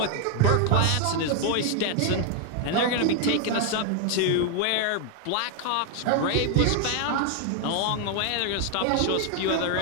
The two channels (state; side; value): different; both; correlation 0.00